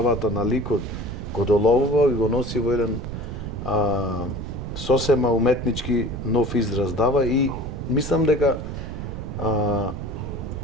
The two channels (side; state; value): right; noise; rumble, 7 dB below the sound